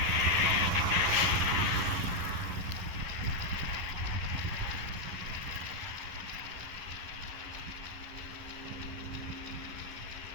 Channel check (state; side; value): late; left; 11 ms